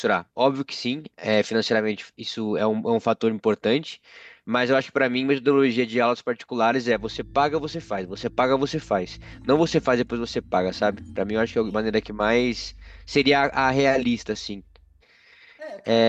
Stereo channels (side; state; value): both; identical; correlation 1.00